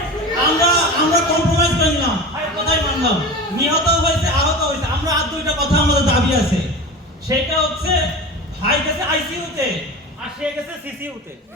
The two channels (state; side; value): normal; both; correlation 0.31